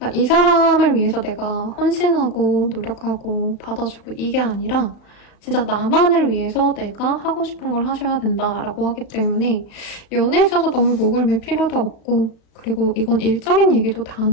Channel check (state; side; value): late; right; 35 ms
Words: 이 사람을 위해서 내가 헌신하고 노력하고 받아주고 이게 아니라 진짜 나만을 위해서 내가 하고 싶은 걸 하셔야 된다라고 하기 때문에 연애에 있어서 너무 목을 맬 필요도 없고 그리고 이건 일적인 얘기도